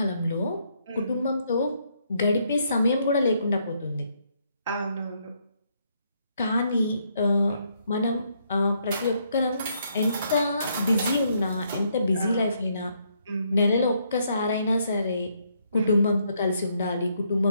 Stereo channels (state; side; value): inverted; both; correlation -0.73